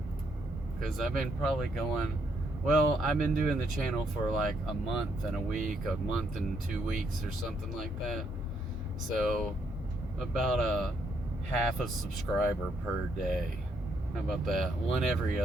because I've been probably going, well, I've been doing the channel for like a month and a week, a month and 2 weeks or something like that. So about a half a subscriber per day. How about that? One every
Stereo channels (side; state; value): both; normal; correlation 0.74